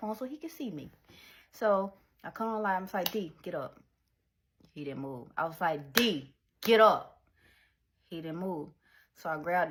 so he could see me. So I cut on the light. I was like, D, get up. He didn't move. I was like, D, get up. He didn't move. So I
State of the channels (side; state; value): both; identical; correlation 1.00